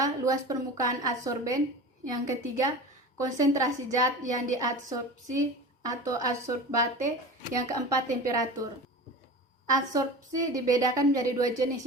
luas permukaan adsorben. Yang ketiga, konsentrasi zat yang diadsorpsi atau adsorbate. Yang keempat, temperatur. Adsorpsi dibedakan menjadi dua jenis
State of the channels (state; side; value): normal; both; correlation 0.33